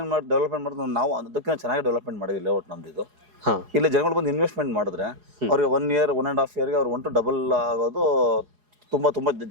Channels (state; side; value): late; left; 4.8 ms